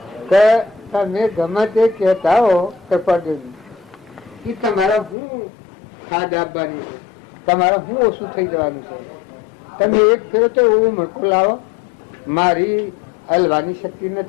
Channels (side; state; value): right; drops out; at 5.2 s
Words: કે તમે ગમે તે કહેતા હો કૃપાદેવી એ તમારા હું ખાદ આપવાની છે, તમારે હું ઓછું થઈ જવાનું છે. તમે એક ફેરો તો એવું મણકું લાવો, મારી હલવાની શક્તિ